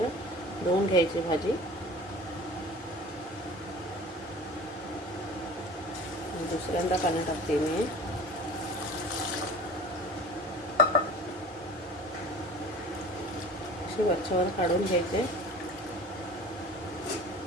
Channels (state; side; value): normal; both; correlation 0.42